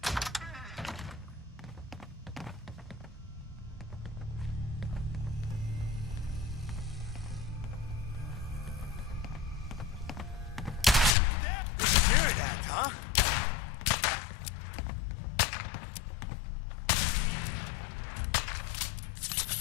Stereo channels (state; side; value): drops out; right; at 11.1 s